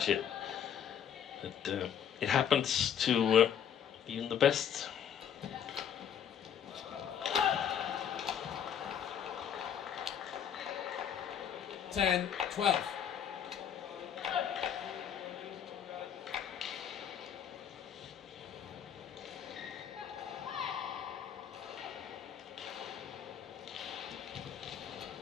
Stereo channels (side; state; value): right; quieter; 8.8 dB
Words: But it happens to even the best. Ten, 12.